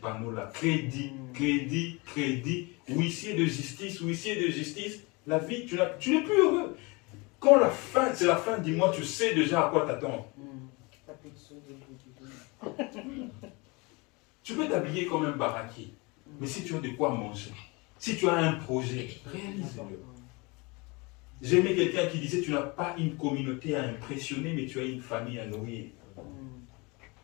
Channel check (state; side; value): quieter; right; 26.9 dB